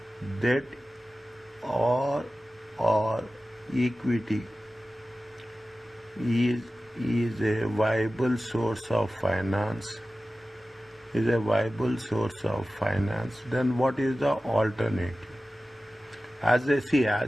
debt or equity is a viable source of finance, then what is the alternative? As they see,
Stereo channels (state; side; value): normal; both; correlation 0.95